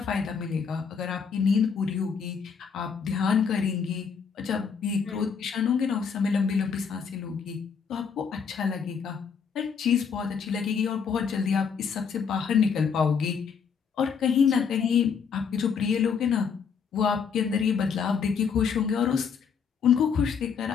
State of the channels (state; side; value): quieter; right; 6.4 dB